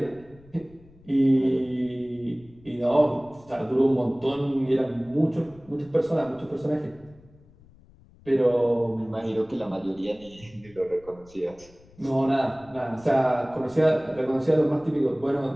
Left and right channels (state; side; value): noise; left; rumble, 25 dB below the sound